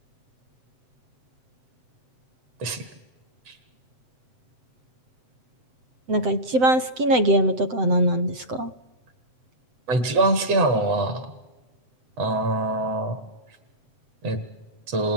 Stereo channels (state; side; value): late; left; 8.0 ms